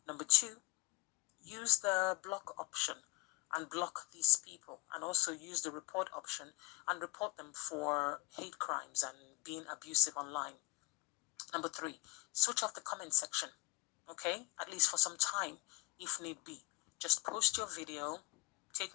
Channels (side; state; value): right; quieter; 22.7 dB